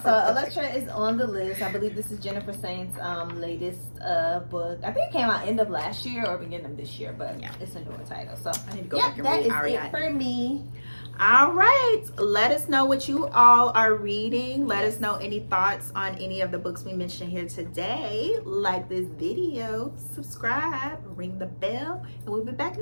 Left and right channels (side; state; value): both; inverted; correlation -1.00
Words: so Elektra is on the list. I believe this is Jennifer Saint's latest book. I think it came out end of last year or beginning of this year, but it's a newer title. So I need to go yeah, back and that read is Ariadne. it for me. All right, let us know what you all are reading. Let us know any thoughts on any of the books we mentioned here today. Like this video, subscribe, ring the bell, and we'll be back